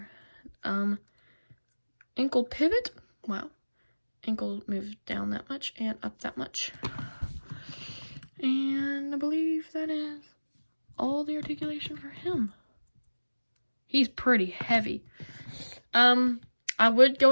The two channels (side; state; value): both; inverted; correlation -1.00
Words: Ankle pivot. Wow. Ankle moved down that much and up that much. And I believe that is all the articulation for him. He's pretty heavy. I would go